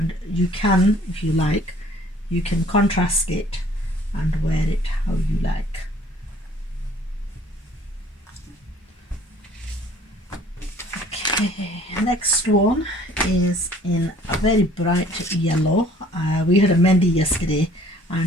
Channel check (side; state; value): both; normal; correlation 0.55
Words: you can, if you like, you can contrast it and wear it how you like. Okay. Okay, next one is in a very bright yellow. We had a mehndi yesterday,